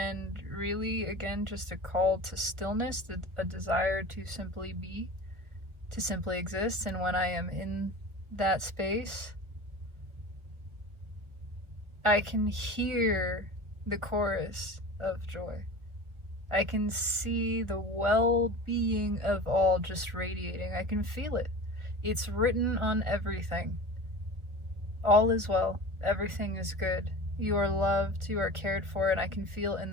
really, again, just a call to stillness, a desire to simply be, to simply exist. And when I am in that space, I can hear the chorus of joy. I can see the well-being of all just radiating. I can feel it. It's written on everything. All is well. Everything is good. You are loved. You are cared for. And I can feel in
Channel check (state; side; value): late; left; 1.2 ms